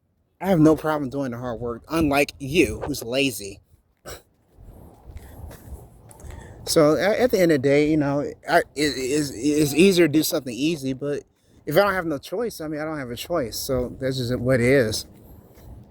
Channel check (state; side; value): identical; both; correlation 1.00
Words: I have no problem doing the hard work, unlike you, who's lazy. So at the end of the day, you know, it's easier to do something easy, but if I don't have no choice, I mean, I don't have a choice. So that's just what it is.